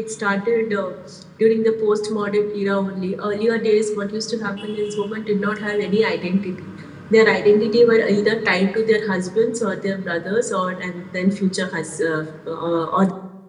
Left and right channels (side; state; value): both; identical; correlation 1.00